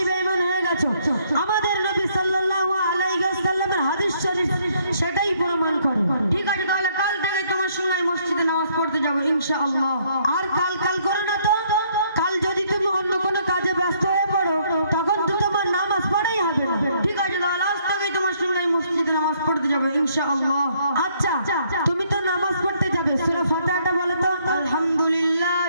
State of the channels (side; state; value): both; inverted; correlation -0.67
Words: বেঈমান হয়ে গেছো। আমাদের নবী সাল্লাল্লাহু আলাইহি ওয়াসাল্লামের হাদিস শরীফ সেটাই প্রমাণ করে। ঠিক আছে, তাহলে কাল থেকে তোমার সঙ্গে আমি মসজিদে নামাজ পড়তে যাবো ইনশাআল্লাহ। আর কাল করো না তো। কাল যদি তুমি অন্য কোনো কাজে ব্যস্ত হয়ে পড়ো, তখন তো তোমার নামাজ পড়াই হবে না। ঠিক আছে, তাহলে আজ থেকে তোমার সঙ্গে আমি মসজিদে নামাজ পড়তে যাবো ইনশাআল্লাহ। আচ্ছা, তুমি তো নামাজ পড়তে যাবে, সূরা ফাতিহাটা বলো তো।